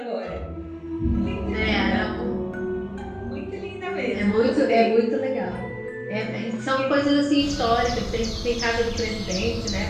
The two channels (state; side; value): identical; both; correlation 1.00